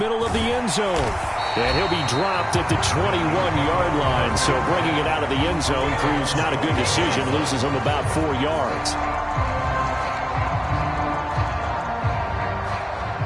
of the end zone, and he'll be dropped at the 21-yard line. So bringing it out of the end zone proves not a good decision, loses him about 4 yards.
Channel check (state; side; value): identical; both; correlation 1.00